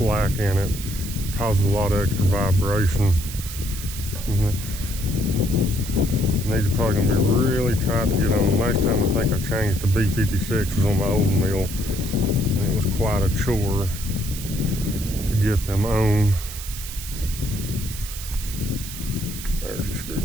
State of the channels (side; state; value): right; noise; hiss, 10 dB below the sound